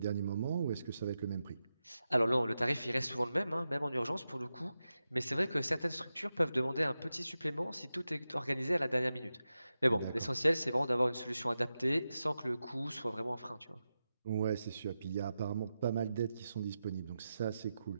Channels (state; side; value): inverted; both; correlation -0.91